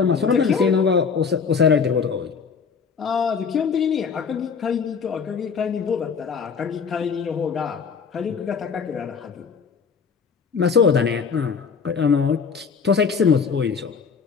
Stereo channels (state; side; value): quieter; right; 5.9 dB